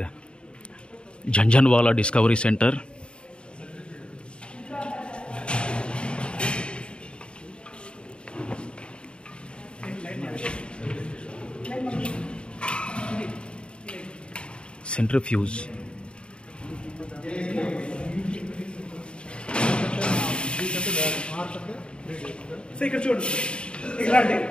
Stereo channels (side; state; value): right; late; 0.054 ms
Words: Janjanwala Discovery Center. Centrifuge. So ఇక్కడ చూడు, ఇలాంటి